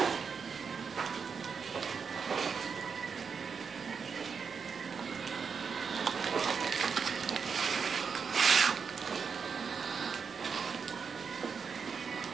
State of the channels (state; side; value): quieter; left; 5.9 dB